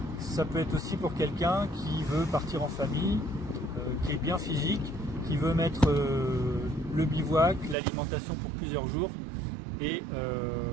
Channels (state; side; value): drops out; left; at 7.8 s